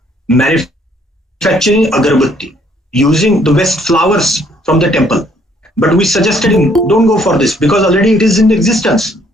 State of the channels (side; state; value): both; normal; correlation 0.65